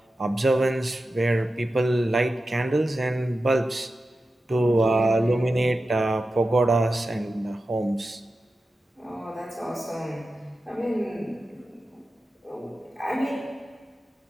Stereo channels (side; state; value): both; normal; correlation 0.92